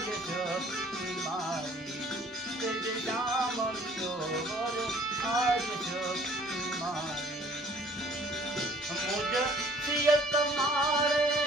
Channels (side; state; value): both; normal; correlation 0.56